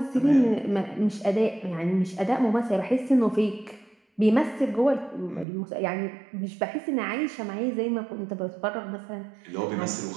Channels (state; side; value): drops out; left; at 5.5 s